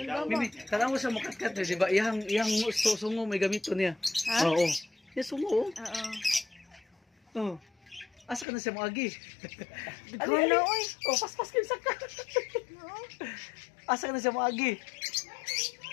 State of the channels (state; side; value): drops out; right; at 8.5 s